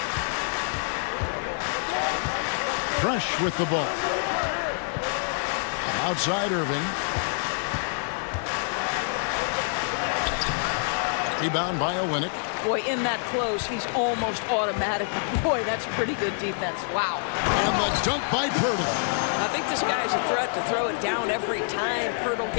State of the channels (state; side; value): silent; right; digital silence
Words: Fresh with the ball. Outside Irving. Rebound by Olynyk. Boy, in that close, he's almost automatic. Boy, that's pretty good defense. Wow. And the dunk by Poeltl. I think this guy's a threat to throw it down every time Poeltl